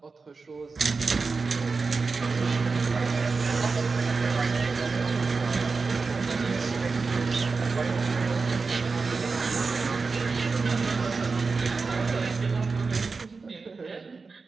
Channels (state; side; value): quieter; left; 4.4 dB